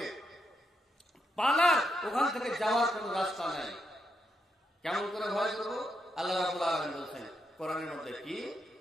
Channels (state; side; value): normal; both; correlation 0.81